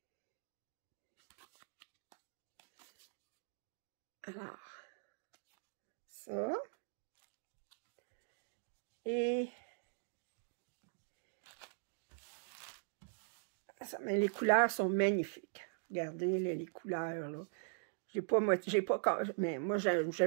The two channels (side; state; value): left; silent; digital silence